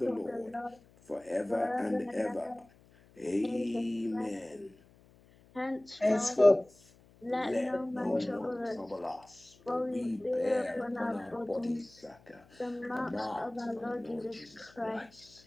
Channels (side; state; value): left; noise; hum, 27 dB below the sound